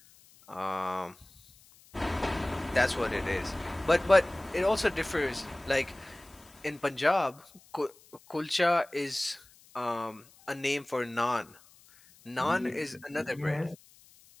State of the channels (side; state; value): left; noise; hiss, 26 dB below the sound